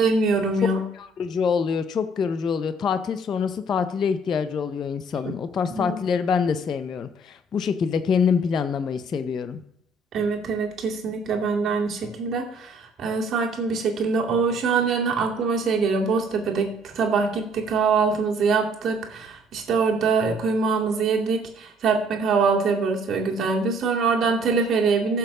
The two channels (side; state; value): both; normal; correlation 0.59